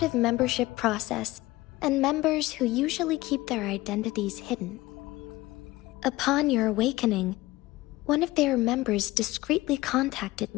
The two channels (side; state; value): right; quieter; 18.9 dB